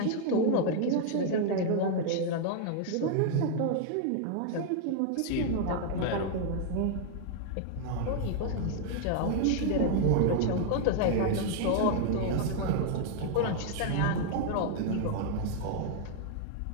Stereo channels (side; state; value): both; different; correlation -0.01